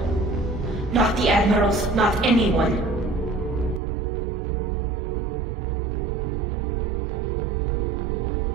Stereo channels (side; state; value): left; drops out; at 3.8 s